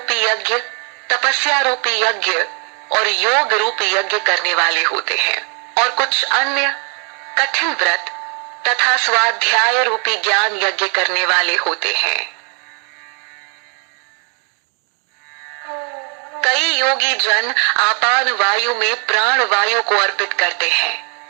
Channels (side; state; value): left; quieter; 38.0 dB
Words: यज्ञ, तपस्या रूपी यज्ञ और योग रूपी यज्ञ करने वाले होते हैं, और कुछ अन्य कठिन व्रत तथा स्वाध्याय रूपी ज्ञान यज्ञ करने वाले होते हैं। कई योगी जन आपान वायु में प्राण वायु को अर्पित करते